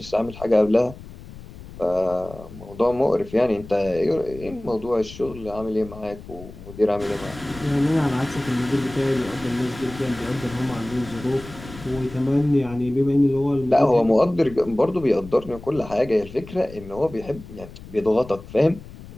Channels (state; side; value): noise; left; rumble, 16 dB below the sound